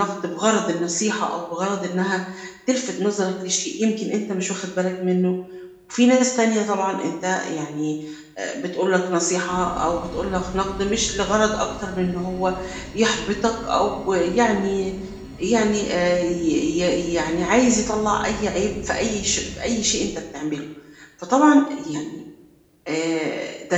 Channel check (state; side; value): identical; both; correlation 1.00